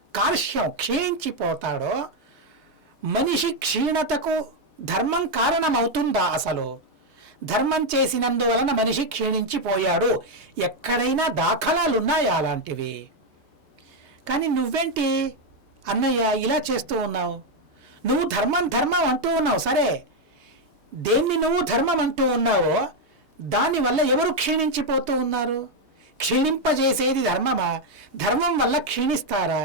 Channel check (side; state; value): both; normal; correlation 0.02